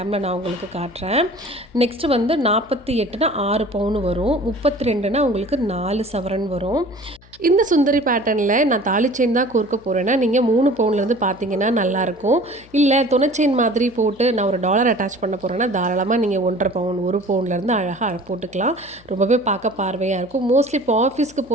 நான் உங்களுக்கு காட்டுறேன். நெக்ஸ்ட்டு வந்து 48னா 6 பவுன் வரும். 32னா உங்களுக்கு 4 சவரன் வரும். இந்த சுந்தரி பேட்டர்னில் நான் தாலி செயின் தான் கோர்க்க போகிறேன்னா நீங்கள் 3 பவுன்லேருந்து பார்த்தீங்கன்னா நல்லாயிருக்கும். இல்லை துணை செயின் மாதிரி போட்டு நான் ஒரு டாலர் அட்டாச் பண்ண போகிறேன்னா தாராளமாக நீங்கள் 1.5 பவுன் 1 பவுன்லேருந்து அழகாக போட்டுக்கலாம். ரொம்பவே பார்க்க பார்வையாக இருக்கும். மோஸ்ட்லி இப்போ ஆஃபீஸ்க்கு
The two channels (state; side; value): noise; left; hum, 26 dB below the sound